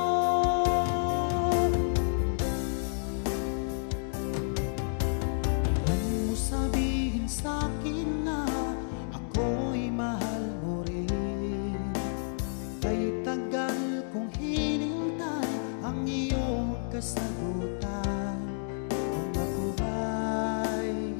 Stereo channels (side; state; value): right; silent; digital silence